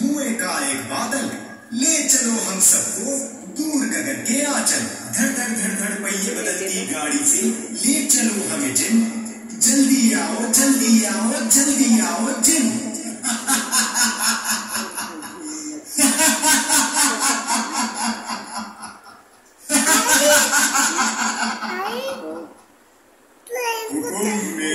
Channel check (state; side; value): identical; both; correlation 1.00